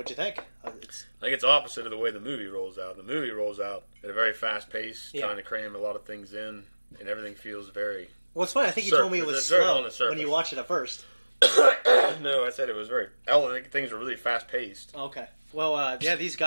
you think? I think it's opposite of the way the movie rolls out. The movie rolls out at a very fast pace, trying to cram a lot of things in, and everything feels very... Well, it's funny. I think you told me it was slow when you watched it at first. No, I said it was things were really fast paced. Okay. Well, these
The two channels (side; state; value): both; inverted; correlation -1.00